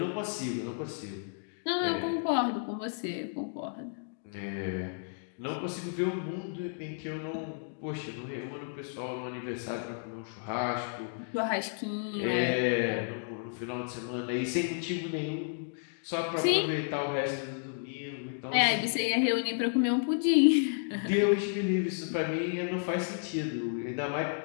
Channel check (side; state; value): right; silent; digital silence